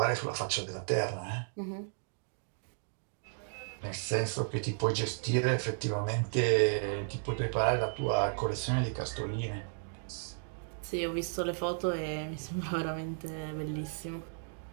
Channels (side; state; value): left; silent; digital silence